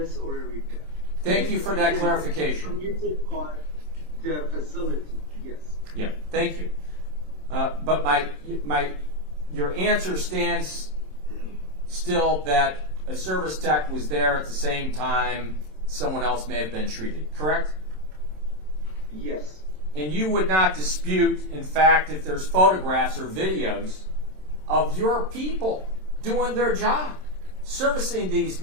or a repair. thank you for that clarification. Permitted by the facility, yes. Yeah, thank you. But your answer stands still that a service tech was there at the same time someone else may have been treated, correct? Yes. And you would not dispute, in fact, if there's photographs or videos of your people doing their job, servicing these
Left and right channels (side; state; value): left; late; 27 ms